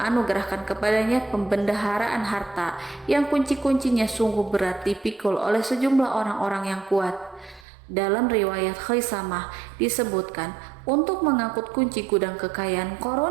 kepadanya pembendaharaan harta yang kunci-kuncinya sungguh berat dipikul oleh sejumlah orang-orang yang kuat. Dalam riwayat Khaisamah disebutkan, untuk mengangkut kunci gudang kekayaan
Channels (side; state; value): left; drops out; at 7.7 s